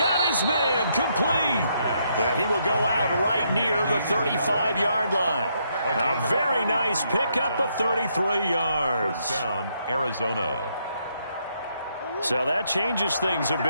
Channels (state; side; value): inverted; both; correlation -0.75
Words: his man complete. And he will go out right near the 35-yard line. A very nice pickup of 33 yards. First down, Arizona. So that changes things a